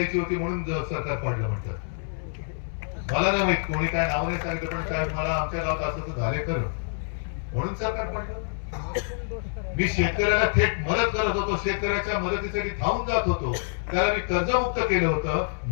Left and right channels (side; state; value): right; silent; 60 dB below the other